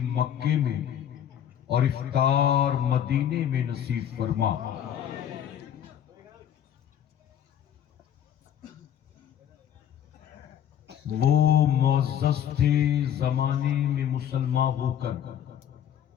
مکے میں اور افطار مدینے میں نصیب فرما۔ وہ معزز تھے زمانے میں مسلمان ہو کر،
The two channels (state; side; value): quieter; right; 9.8 dB